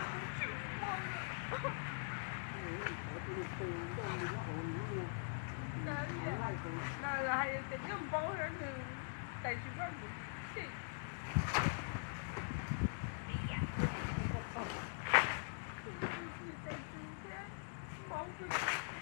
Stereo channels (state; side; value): silent; right; digital silence